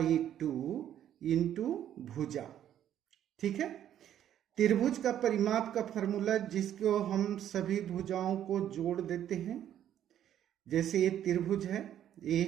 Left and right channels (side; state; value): left; quieter; 10.7 dB